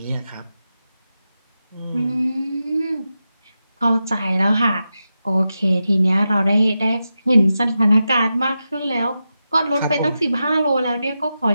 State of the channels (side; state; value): both; inverted; correlation -0.90